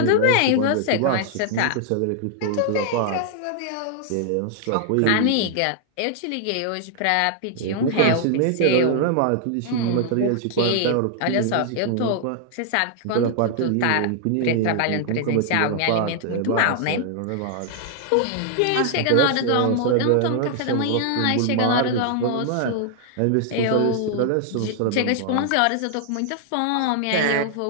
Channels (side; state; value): both; different; correlation 0.00